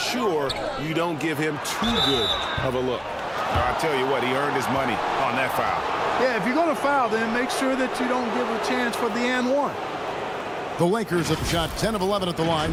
you don't give him too good of a look. I'll tell you what, he earned his money on that foul. Yeah, if you're going to foul, then make sure that you don't give a chance for the and one. The Lakers have shot 10 of 11 at the line.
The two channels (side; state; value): both; identical; correlation 1.00